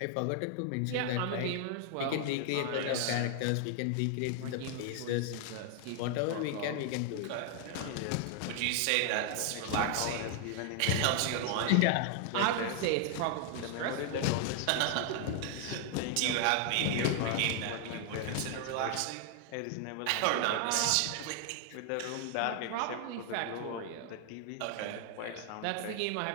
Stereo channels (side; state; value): both; different; correlation 0.00